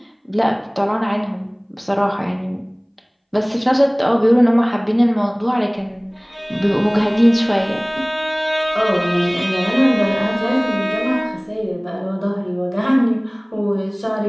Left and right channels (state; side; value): identical; both; correlation 1.00